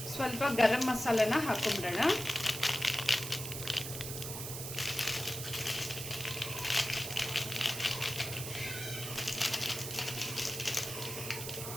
ಸ್ವಲ್ಪ ಗರಂ ಮಸಾಲೆನ ಹಾಕೊಂಡ್ಬಿಡೋಣ.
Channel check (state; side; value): noise; right; hiss, 6 dB below the sound